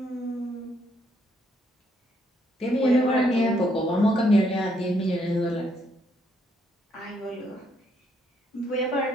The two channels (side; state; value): both; normal; correlation 0.72